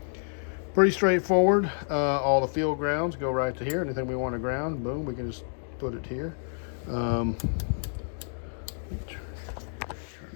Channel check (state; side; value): silent; right; digital silence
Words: Pretty straightforward. All the field grounds go right to here. Anything we want to ground, boom, we can just put it here. Turn